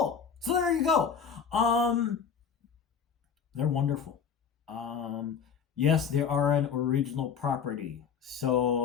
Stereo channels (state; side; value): quieter; right; 6.8 dB